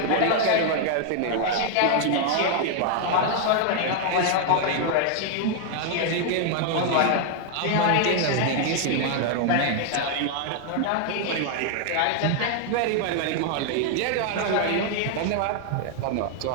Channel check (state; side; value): different; both; correlation 0.00